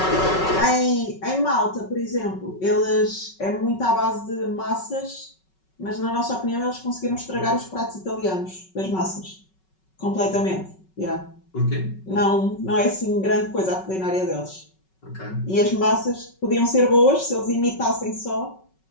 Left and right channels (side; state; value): right; late; 5.3 ms